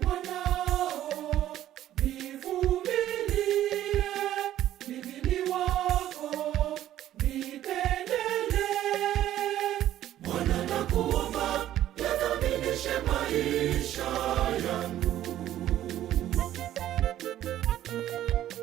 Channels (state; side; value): quieter; left; 12.6 dB